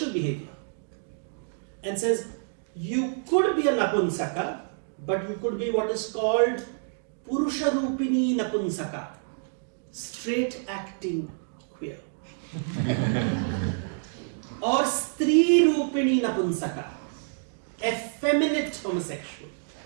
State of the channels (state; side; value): silent; left; digital silence